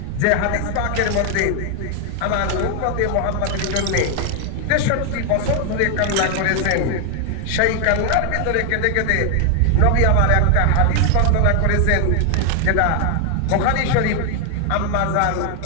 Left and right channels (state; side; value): different; both; correlation 0.00